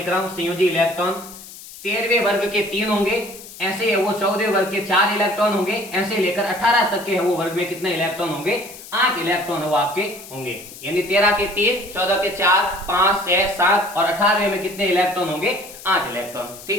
रहा हूं संयोजी इलेक्ट्रॉन 13वें वर्ग के 3 होंगे, ऐसे है वो 14वें वर्ग के 4 इलेक्ट्रॉन होंगे, ऐसे लेकर 18 तक के है वो वर्ग में कितने इलेक्ट्रॉन होंगे, 8 इलेक्ट्रॉन है वो आपके होंगे, यानी 13 के 3, 14 के 4, 5, 6, 7 और 18वें में कितने इलेक्ट्रॉन होंगे, 8 इलेक्ट्रॉन,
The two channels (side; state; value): left; noise; hiss, 16 dB below the sound